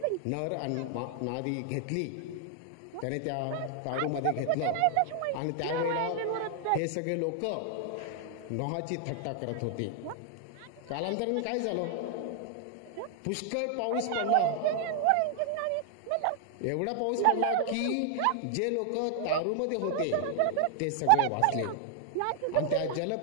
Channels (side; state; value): both; different; correlation 0.00